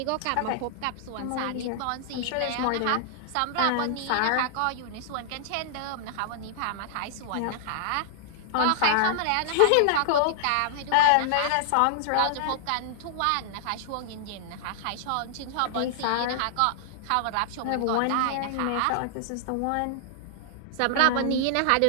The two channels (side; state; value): both; different; correlation -0.01